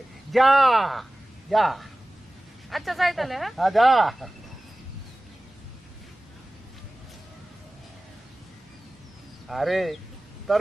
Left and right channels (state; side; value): normal; both; correlation 0.98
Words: যা যা আচ্ছা যাই তাহলে। হ্যাঁ যা। আরে তোর